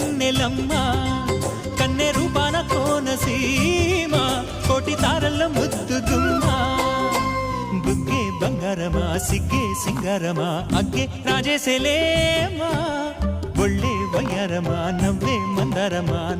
కన్నె రూపాన కోనసీమ కోటి తారల్లో ముద్దుగుమ్మా బుగ్గే బంగారమా సిగ్గే సింగారమా అగ్గే రాజేసేలేమా ఒళ్ళే వయ్యారమా నవ్వే మందారమా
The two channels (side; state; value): both; identical; correlation 1.00